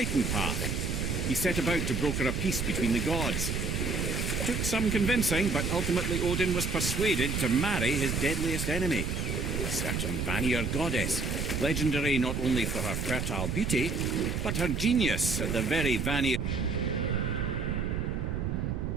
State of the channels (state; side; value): noise; right; rumble, 1 dB below the sound